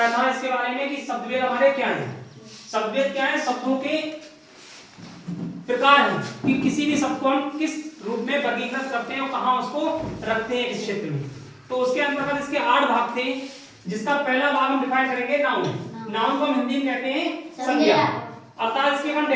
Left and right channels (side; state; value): both; identical; correlation 1.00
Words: था इसके बारे में कि शब्दभेद हमारे क्या है। शब्दभेद क्या है? शब्दों के प्रकार है कि किसी भी शब्द को हम किस रूप में वर्गीकृत करते हैं और कहाँ उसको रखते हैं इस क्षेत्र में। तो उसके अंतर्गत इसके 8 भाग थे, जिसका पहला भाग हम डिफाइन करेंगे नाउन। नाउन को हम हिंदी में कहते हैं संज्ञा। अर्थात इसकी हम